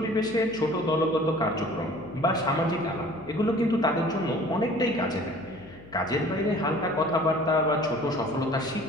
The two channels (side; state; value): left; noise; hum, 22 dB below the sound